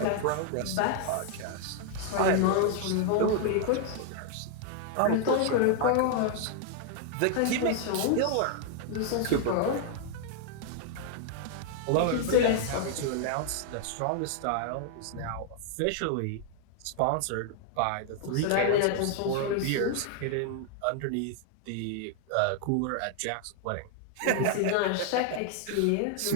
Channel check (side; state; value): both; different; correlation 0.00